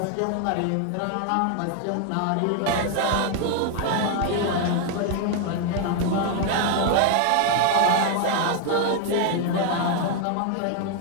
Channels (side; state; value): both; different; correlation 0.00